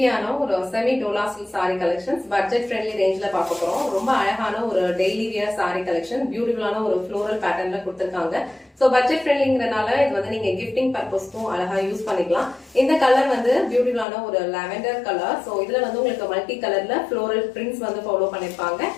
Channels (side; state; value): right; drops out; at 14.1 s